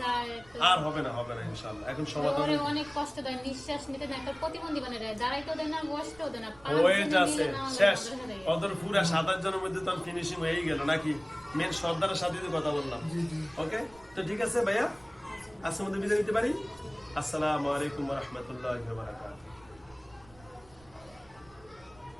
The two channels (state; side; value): noise; right; rumble, 26 dB below the sound